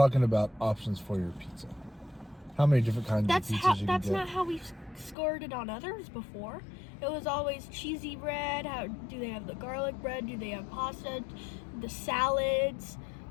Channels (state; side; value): drops out; right; at 5.2 s